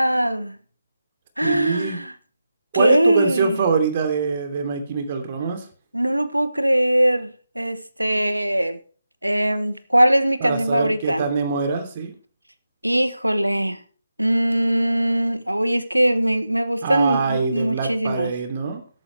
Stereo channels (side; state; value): both; inverted; correlation -0.90